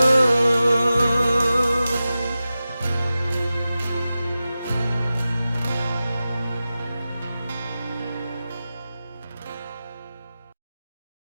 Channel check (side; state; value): both; inverted; correlation -0.94